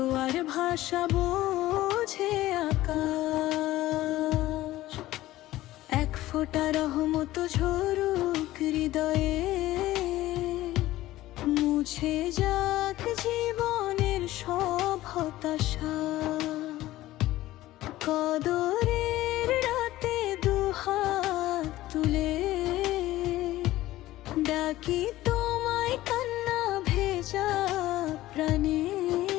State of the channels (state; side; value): quieter; right; 16.0 dB